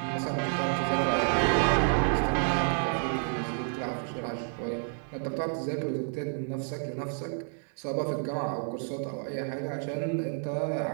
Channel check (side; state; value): left; silent; 58 dB below the other